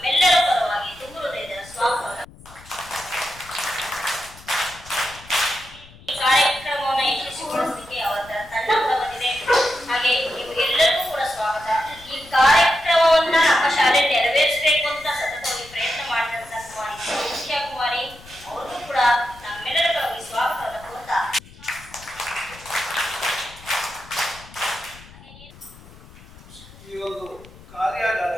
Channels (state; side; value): noise; left; rumble, 21 dB below the sound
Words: ಪರವಾಗಿ ತುಂಬ ಹೃದಯದ ಸ್ವಾಗತ. ಈ ಕಾರ್ಯಕ್ರಮವನ್ನು ಯಶಸ್ವಿಗೊಳಿಸಲಿಕ್ಕೆ ಅವರ ತಂಡ ಕೂಡ ಬಂದಿದೆ. ಹಾಗೆ ನಿಮಗೆಲ್ಲರಿಗೂ ಕೂಡ ಸ್ವಾಗತ. ಈ ಕಾರ್ಯಕ್ರಮವನ್ನ ನಮ್ಮ ಶಾಲೆ ನೆರವೇರಿಸಬೇಕು ಅಂತ ಸತತವಾಗಿ ಪ್ರಯತ್ನ ಮಾಡಿದಂತ ಕುಮಾರಿ ಸೌಖ್ಯ ಕುಮಾರಿ ಅವ್ರಿಗೂ ಕೂಡ ನಮ್ಮೆಲ್ಲರ ಪರವಾಗಿ ಸ್ವಾಗತವನ್ನು ಕೋರ್ತಾ ಈ ಒಂದು